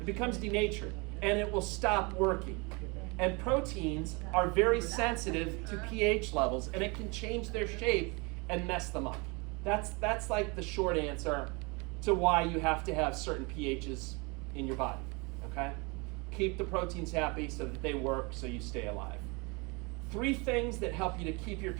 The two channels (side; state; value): left; quieter; 28.8 dB